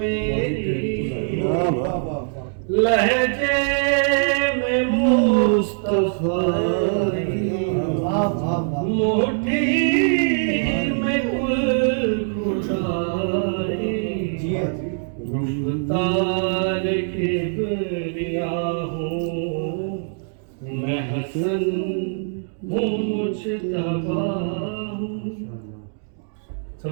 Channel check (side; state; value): left; silent; digital silence